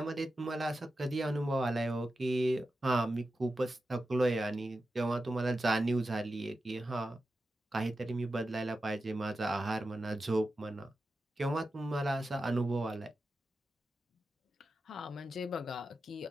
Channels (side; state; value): both; normal; correlation 0.91